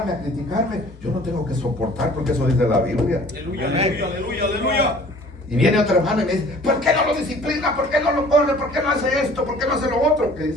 a criticarme, yo no tengo que soportar, porque eso dice la Biblia. Aleluya, aleluya, aleluya, aleluya. Y viene otro hermano y me dice, ¿por qué no lo disciplina? ¿Por qué no lo corre? ¿Por qué no hace esto? ¿Por qué no hace lo otro? ¿Qué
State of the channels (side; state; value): both; normal; correlation 0.50